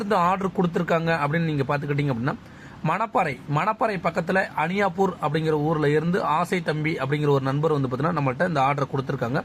ஆர்டர் கொடுத்துருக்காங்க அப்படின்னு நீங்கள் பார்த்துக்கிட்டீங்க அப்படின்னா, மணப்பாறை பக்கத்தில் அனியாப்பூர் அப்படிங்கிற ஊரில் இருந்து ஆசை தம்பி அப்படிங்கிற ஒரு நண்பர் வந்து பார்த்தீங்கன்னா நம்மள்ட்ட இந்த ஆர்டர் கொடுத்துருக்காங்க.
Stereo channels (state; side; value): identical; both; correlation 1.00